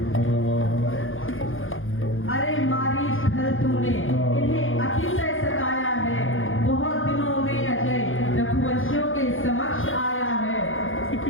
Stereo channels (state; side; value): late; right; 0.59 ms